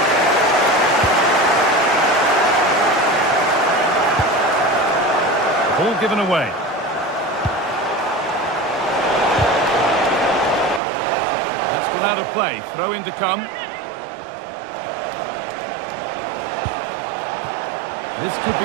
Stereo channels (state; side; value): drops out; left; at 10.8 s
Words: Ball given away. That's gone out of play. Throw in to come. This could